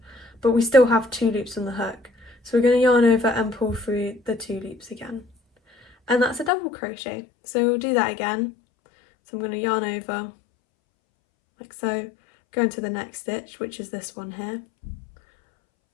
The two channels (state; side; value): drops out; right; at 6.5 s